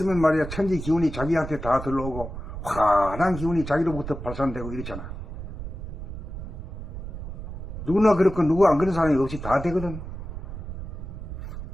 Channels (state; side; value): noise; right; rumble, 8 dB below the sound